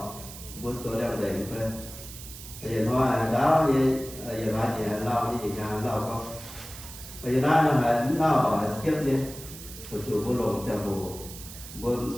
vua tôi đang để phải bây giờ hoa đáo đi giờ lại gì lau đi nhà lau không bây giờ nó là nó ở xếp đi một chủ vô lồng xe bồ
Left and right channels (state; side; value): noise; right; hiss, 14 dB below the sound